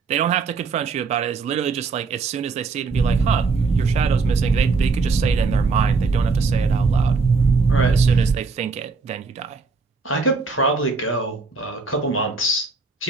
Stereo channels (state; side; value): quieter; left; 4.4 dB